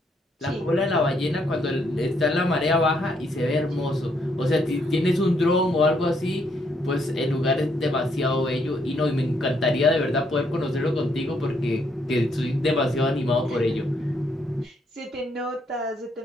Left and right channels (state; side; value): normal; both; correlation 0.73